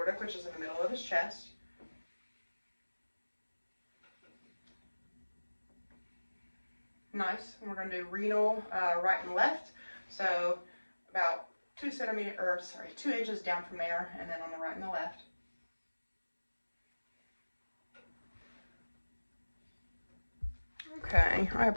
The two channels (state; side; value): inverted; both; correlation -1.00